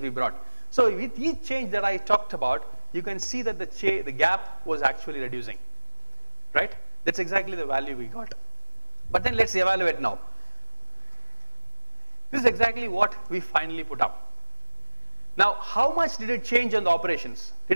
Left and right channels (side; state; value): both; inverted; correlation -1.00